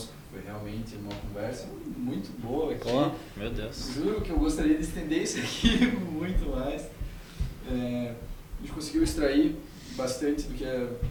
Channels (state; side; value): identical; both; correlation 1.00